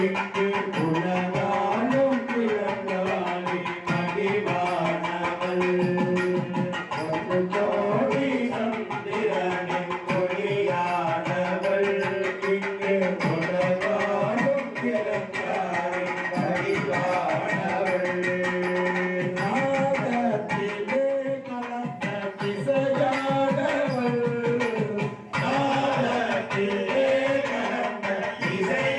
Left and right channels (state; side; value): identical; both; correlation 1.00